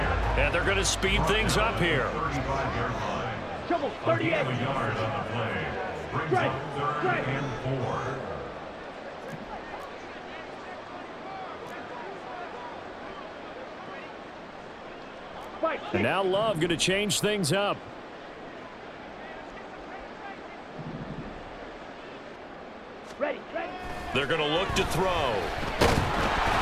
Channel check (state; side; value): identical; both; correlation 1.00